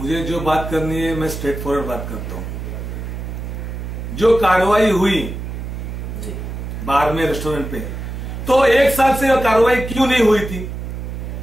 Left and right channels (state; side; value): noise; right; hum, 7 dB below the sound